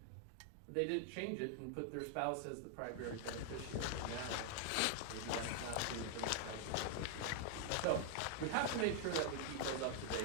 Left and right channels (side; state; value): both; different; correlation 0.00